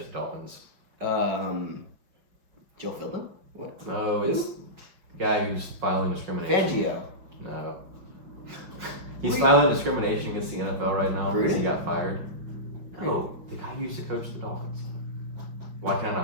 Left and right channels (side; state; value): left; late; 5.6 ms